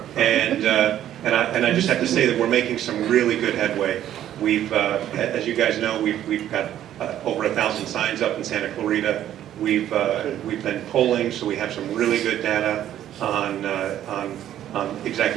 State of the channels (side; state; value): left; quieter; 11.6 dB